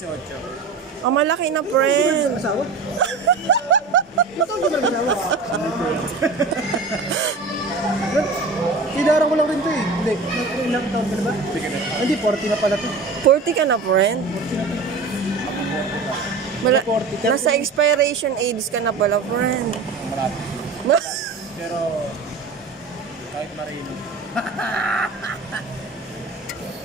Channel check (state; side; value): quieter; left; 4.1 dB